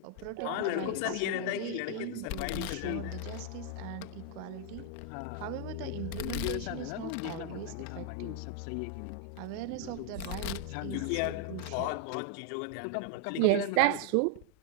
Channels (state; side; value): different; both; correlation 0.00